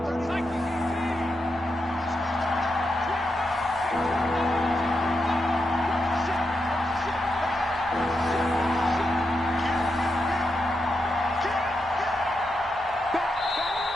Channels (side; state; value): both; normal; correlation 0.85